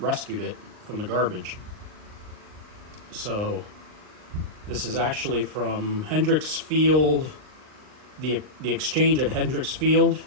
it from the garbage. So this is actually from Hendricks Field, the exchange at Hendricks Field.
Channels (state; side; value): late; left; 39 ms